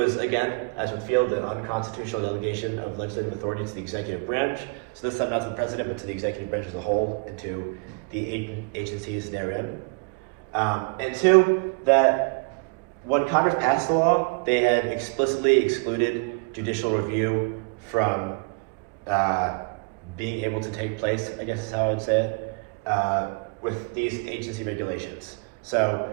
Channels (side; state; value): left; quieter; 32.0 dB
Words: again, as with Field, an unconstitutional delegation of legislative authority to the executive branch. So this time not to the president, but to the executive branch as a whole, and to the agencies therein. And two, that when Congress passed the law, they had explicitly excluded judicial review from being able to take place, I guess is how I would say it, with these agency regulations. So